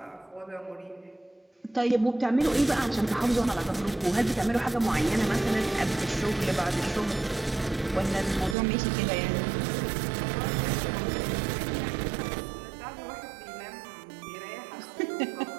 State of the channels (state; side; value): drops out; left; at 8.6 s